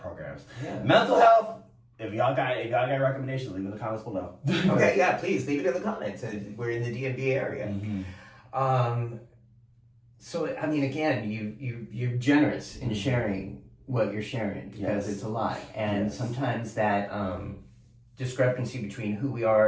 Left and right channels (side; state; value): both; identical; correlation 1.00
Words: Yeah. Mental health, if y'all got recommendations, leave in the comments below. Okay, yeah, please leave it in the comments. We're in the DMV area. Mm-hmm. So I mean, again, you're generous in sharing what you're sharing because it's a lot, and sometimes that discrepancy between who we